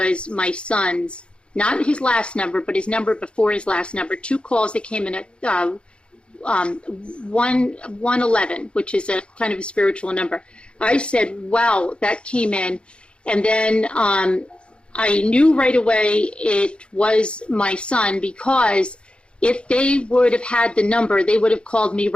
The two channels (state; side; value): late; right; 0.056 ms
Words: my son's, not his last number, but his number before his last number. 2 calls that came in at 111, which is a kind of a spiritual number. I said, wow, that came in. And then I knew right away it was my son, because if they would have had the number, they would have called me